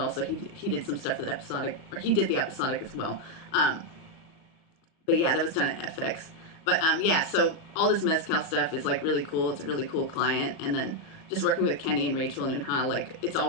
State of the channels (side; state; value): right; late; 37 ms